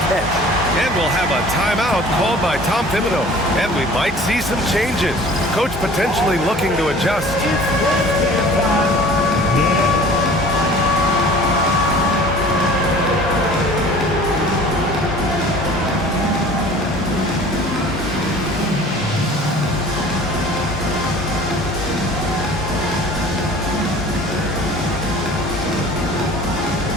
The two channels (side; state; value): both; normal; correlation 0.46